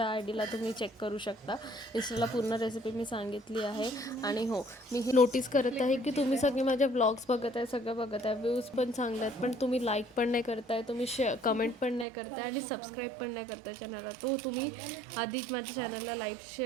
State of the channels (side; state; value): left; drops out; at 12.1 s